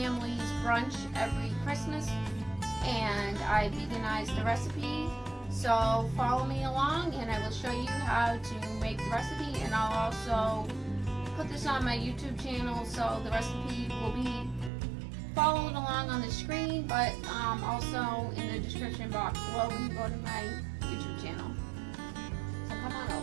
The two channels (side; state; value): left; drops out; at 14.7 s